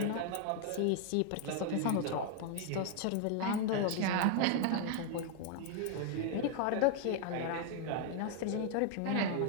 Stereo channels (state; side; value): different; both; correlation 0.00